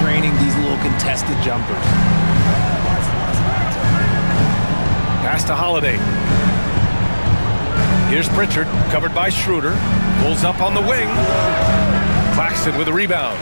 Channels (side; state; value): both; inverted; correlation -1.00